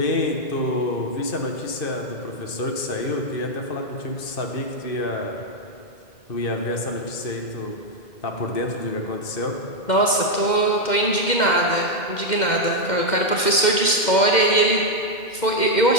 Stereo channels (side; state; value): right; late; 2.1 ms